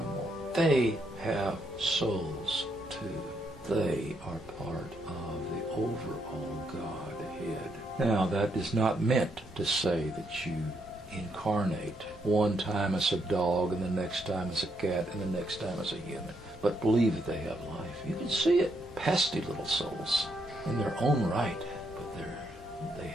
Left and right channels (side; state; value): both; normal; correlation 0.76